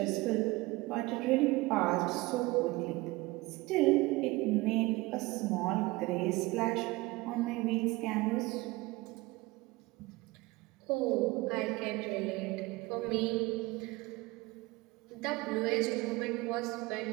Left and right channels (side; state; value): left; quieter; 21.9 dB